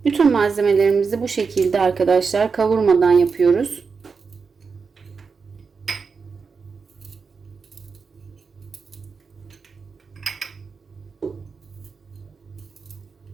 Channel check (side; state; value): left; quieter; 5.2 dB